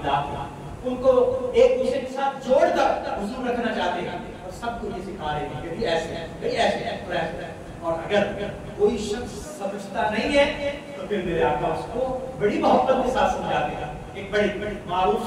کے ان کو ایک دوسرے کے ساتھ جوڑ کر حضور رکھنا چاہتے ہیں، اور سب کو یہ سکھا رہے ہیں کہ ایسے ہیں، ایسے ہیں، ایسے ہیں۔ اور اگر کوئی شخص سمجھتا نہیں ہے تو پھر میرے آقا اس کو بڑی محبت کے ساتھ سمجھاتے ہیں۔ ایک بڑی معروف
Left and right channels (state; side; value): identical; both; correlation 1.00